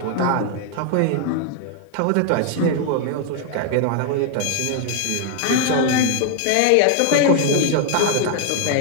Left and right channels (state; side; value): different; both; correlation 0.00